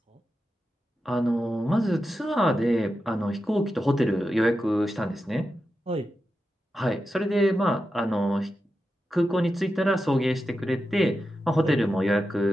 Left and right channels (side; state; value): both; normal; correlation 0.90